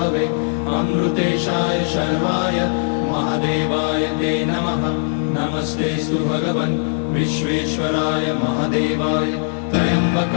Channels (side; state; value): right; silent; 66 dB below the other